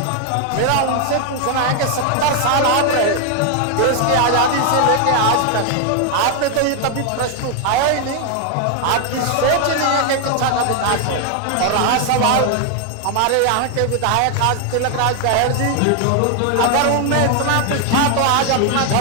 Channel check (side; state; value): both; different; correlation 0.00